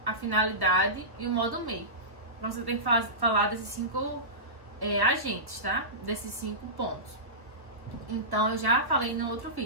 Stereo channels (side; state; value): left; late; 1.3 ms